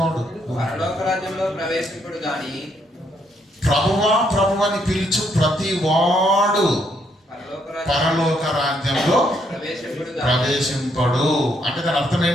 పరలోక రాజ్యంలో ప్రవేశింపుడు గాని. ప్రభువా ప్రభువని పిలుచు ప్రతివాడు పరలోక రాజ్యంలో ప్రవేశింపడు. అంటే దాని అర్థం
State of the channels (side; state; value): both; normal; correlation 0.73